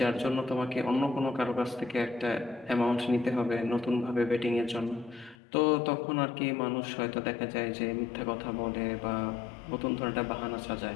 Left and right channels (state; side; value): drops out; right; at 5.4 s